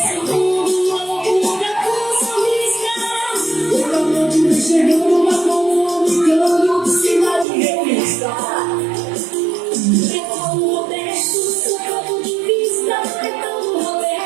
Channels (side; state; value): left; drops out; at 7.5 s